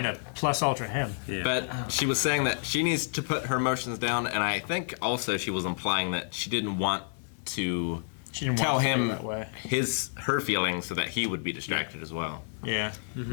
to plus ultra him. Yeah. But she was saying that she needs to put her emotions down, and I think also she was implying that she didn't want to She didn't tell want to feel him that way. her feelings so that he would be distracted as well. Yeah.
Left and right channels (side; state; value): right; silent; digital silence